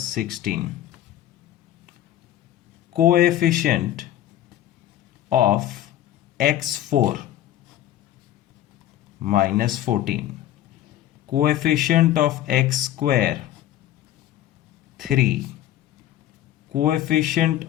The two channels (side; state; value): right; quieter; 12.7 dB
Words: 16. Coefficient of x4 minus 14. Coefficient of x square 3. Coefficient